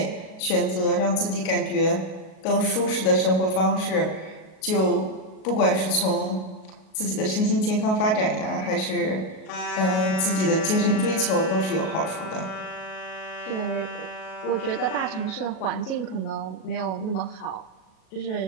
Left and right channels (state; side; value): late; right; 37 ms